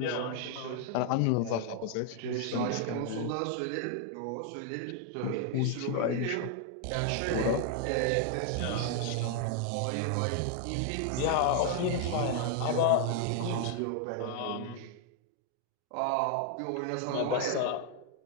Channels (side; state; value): both; different; correlation 0.00